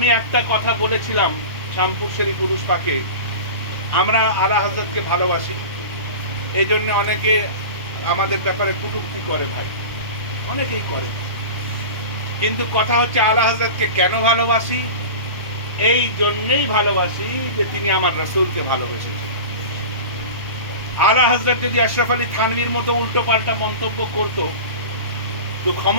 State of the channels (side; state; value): both; inverted; correlation -0.32